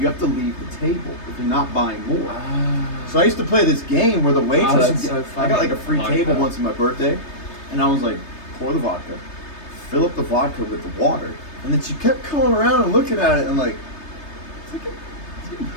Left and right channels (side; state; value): right; late; 3.3 ms